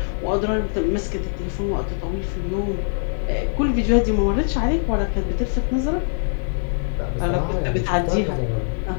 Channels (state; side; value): silent; right; digital silence